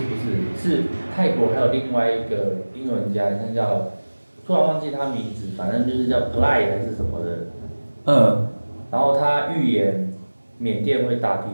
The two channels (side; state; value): both; inverted; correlation -1.00